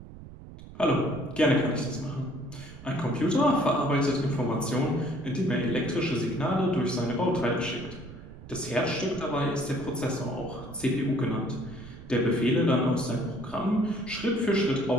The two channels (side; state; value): right; noise; rumble, 16 dB below the sound